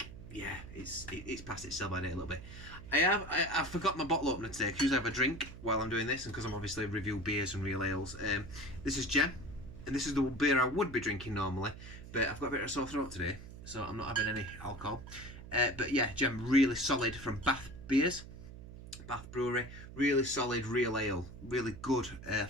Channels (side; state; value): right; noise; hum, 14 dB below the sound